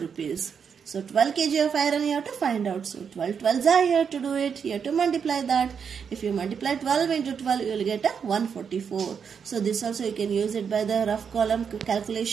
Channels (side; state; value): left; quieter; 6.8 dB